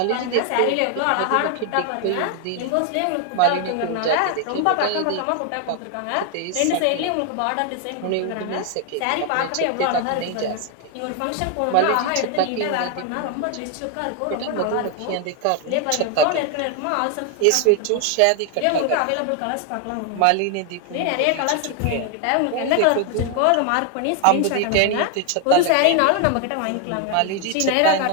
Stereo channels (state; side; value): different; both; correlation 0.01